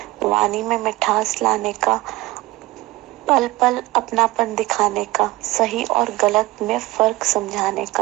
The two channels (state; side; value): quieter; left; 19.4 dB